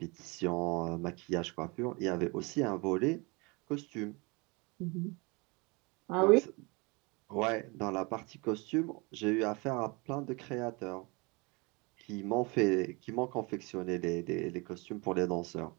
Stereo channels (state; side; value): quieter; left; 28.0 dB